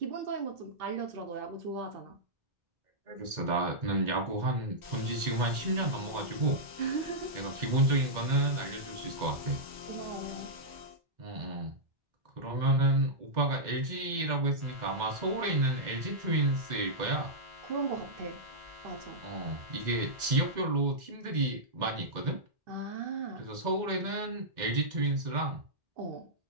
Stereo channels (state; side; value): late; left; 2.1 ms